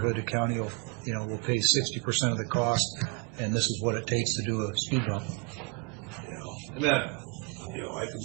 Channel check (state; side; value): quieter; left; 31.3 dB